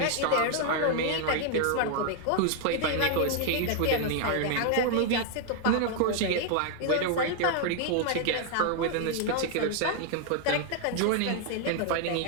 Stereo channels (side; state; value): both; different; correlation 0.00